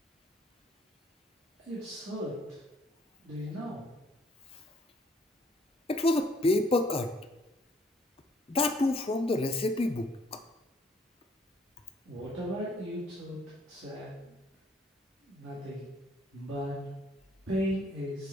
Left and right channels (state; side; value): normal; both; correlation 0.64